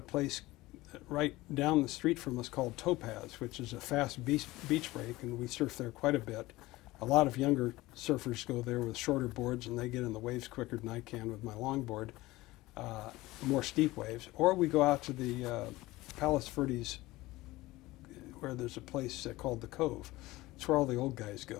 place right down the street from us called Topaz, which is a fast beach break, and we surf there quite a bit. A lot of younger surfers go there with shorter boards, and they get in the waves quicker than I can with my longboard, more steep waves. Or we go out to the Palos Verdes, where there's a place called the Cove. It's where all the old guys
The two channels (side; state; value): right; quieter; 19.1 dB